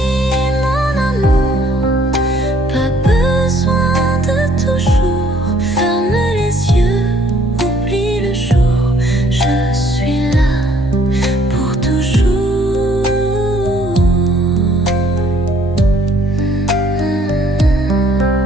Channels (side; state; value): both; normal; correlation 0.63